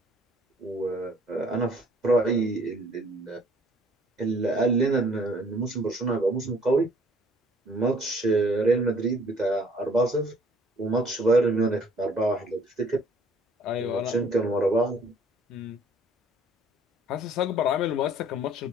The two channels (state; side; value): normal; both; correlation 0.58